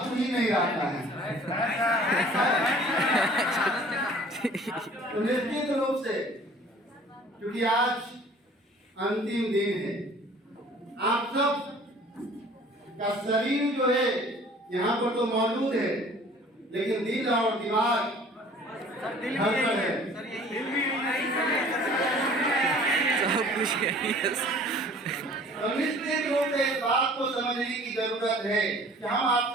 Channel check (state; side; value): normal; both; correlation 0.50